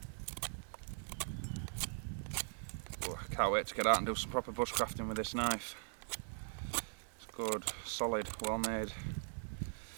Oh, I can't wait to get out and do some proper bushcrafting with this knife. It's good, solid, well made.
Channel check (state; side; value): silent; left; digital silence